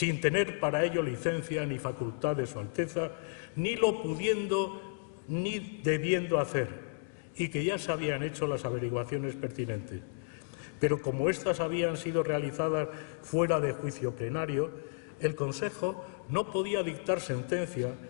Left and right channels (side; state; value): right; silent; digital silence